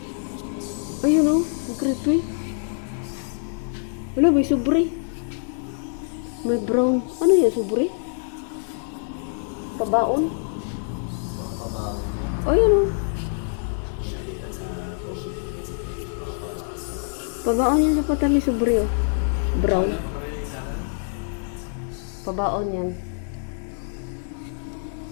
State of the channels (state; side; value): silent; right; digital silence